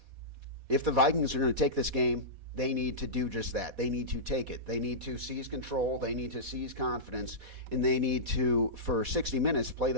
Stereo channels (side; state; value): left; late; 4.1 ms